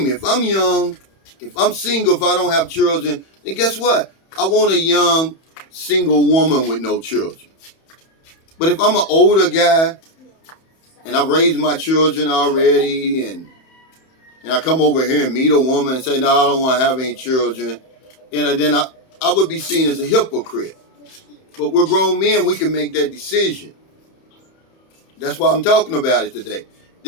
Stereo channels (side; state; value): right; late; 31 ms